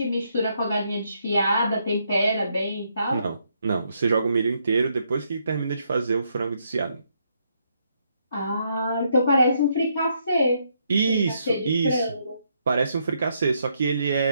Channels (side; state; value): both; inverted; correlation -0.75